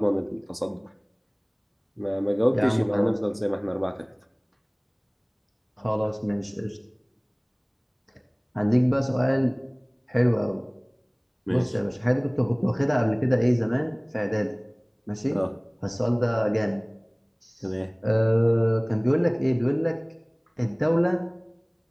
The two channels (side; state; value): both; identical; correlation 1.00